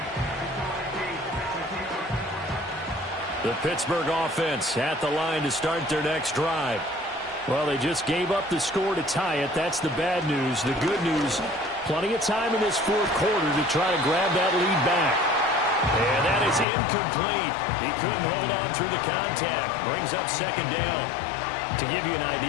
The Pittsburgh offense at the line to start their next drive. Well, they just gave up the score to tie it. That's the bad news. The good news, Plenty of time in this fourth quarter to try to grab that lead back. And that is incomplete. He couldn't hold on through the contact. Brings up second down. To give you an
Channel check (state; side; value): drops out; right; at 16.7 s